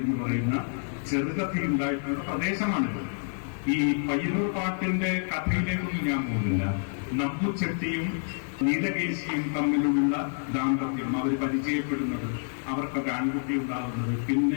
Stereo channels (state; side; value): silent; right; 59 dB below the other